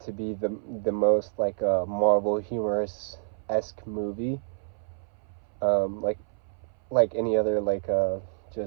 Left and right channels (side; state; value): left; silent; 58 dB below the other